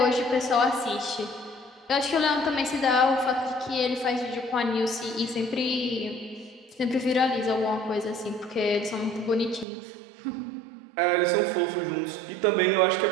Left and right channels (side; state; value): left; drops out; at 9.7 s